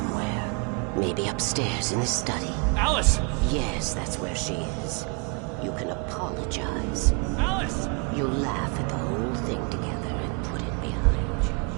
Maybe upstairs in the study. Alice! Yes, that's where she is. You can apologize. Alice! You laugh at the whole thing together and put it behind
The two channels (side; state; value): left; quieter; 33.8 dB